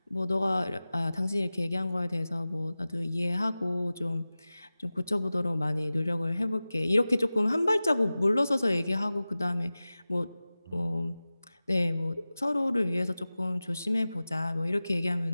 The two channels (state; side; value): inverted; both; correlation -0.97